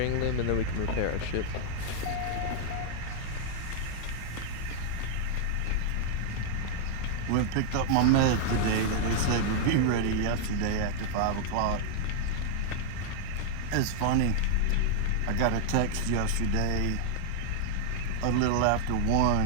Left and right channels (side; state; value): both; different; correlation -0.01